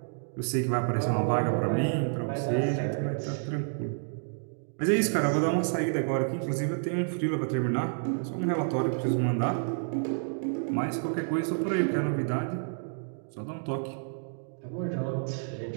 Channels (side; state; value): left; silent; digital silence